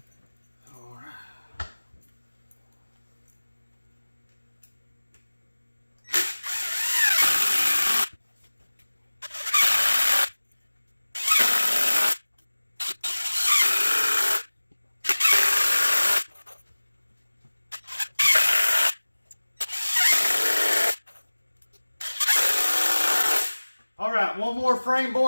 All right, one more frame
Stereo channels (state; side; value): inverted; both; correlation -1.00